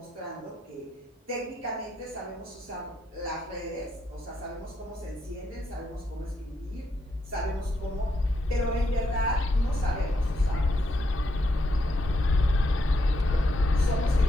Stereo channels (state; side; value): normal; both; correlation 0.79